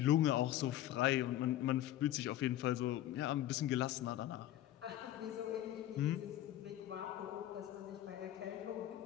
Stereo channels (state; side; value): quieter; right; 13.1 dB